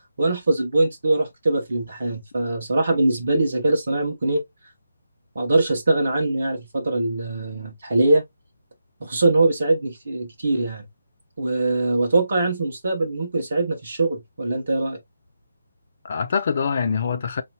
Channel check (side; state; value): both; inverted; correlation -0.87